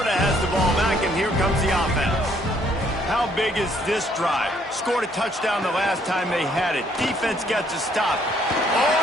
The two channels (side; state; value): both; normal; correlation 0.66